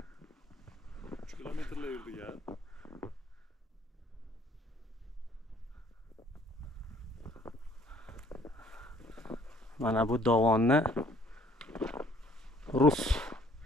qilaverdik ya. Mana bu dovonni rus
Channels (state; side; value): normal; both; correlation 0.60